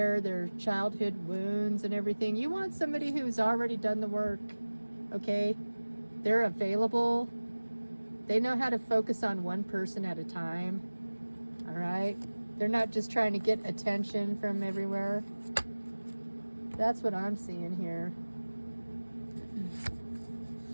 their childhood wounds and everything. You want somebody who's already done the work, okay? They're available. They know how to focus on one person at a time, all right? They're not just trying to get attention from everywhere. That's what I'm seeing here.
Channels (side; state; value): both; inverted; correlation -1.00